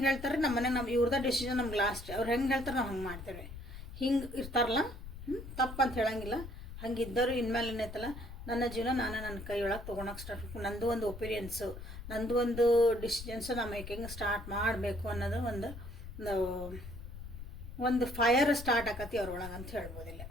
ಹೇಳ್ತಾರೆ ನಮ್ಮ ಮನೆಗೆ, ನಮ್ಮ ಇವ್ರದ ಡಿಸಿಷನ್ ನಮ್ಗೆ ಲಾಸ್ಟ್. ಅವ್ರು ಹೆಂಗೆ ಹೇಳ್ತಾರೆ ನಾವು ಹಂಗೆ ಮಾಡ್ತೇವೆ. ಹಿಂಗೆ ಇರ್ತಾರಲ್ಲ, ತಪ್ಪಂತ ಹೇಳಂಗಿಲ್ಲ. ಹಂಗಿದ್ದವರು ಇನ್ಮೇಲೆ ಏನೈತಲ್ಲ, ನನ್ನ ಜೀವನ ನಾನು ನನ್ನ ಕೈ ಒಳಗೆ ತೊಗೊಳಕ್ಕೆ ಸ್ಟಾರ್ಟ್ ಮಾಡ್ಬೇಕು, ನಂದು ಒಂದು ಒಪಿನಿಯನ್ಸು, ನಂದು ಒಂದು ಡಿಸಿಷನ್ಸು ನಾವು ಮೇಕಿಂಗ್ ಸ್ಟಾರ್ಟ್ ಮಾಡಬೇಕು ಅನ್ನೋದು ಒಂದು ಫೈರ್ ಸ್ಟಾರ್ಟ್ ಆಕತಿ ಅವ್ರೊಳಗೆ ಅಂತ ಹೇಳ್ಬೋದಿಲ್ಲ.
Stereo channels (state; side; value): noise; left; rumble, 11 dB below the sound